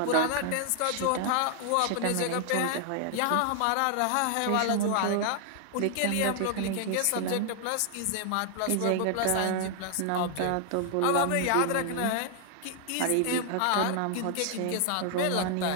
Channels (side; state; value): both; different; correlation 0.00